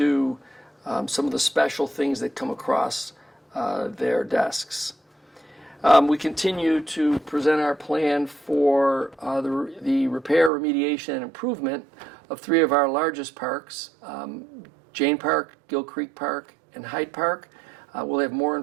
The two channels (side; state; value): left; drops out; at 10.5 s